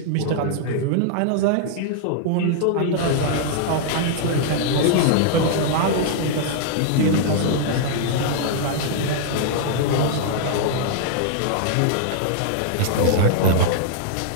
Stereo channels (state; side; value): different; both; correlation -0.01